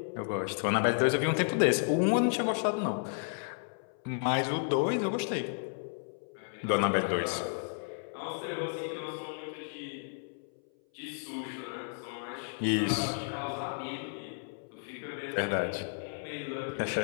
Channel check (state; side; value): silent; right; 56 dB below the other